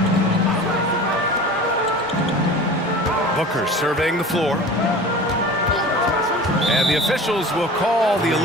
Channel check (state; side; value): normal; both; correlation 0.38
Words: Booker surveying the floor. And the officials will call the